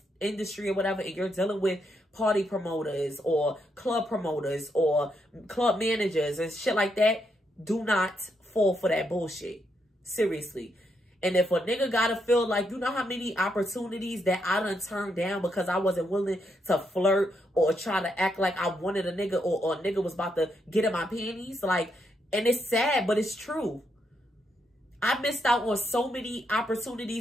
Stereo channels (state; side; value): normal; both; correlation 0.79